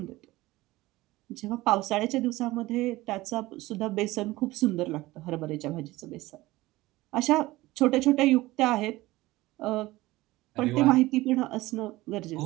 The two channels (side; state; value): left; quieter; 18.7 dB